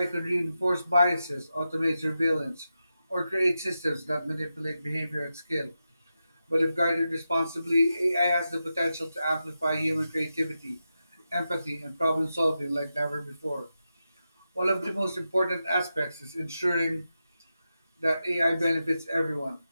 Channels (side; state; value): both; inverted; correlation -0.89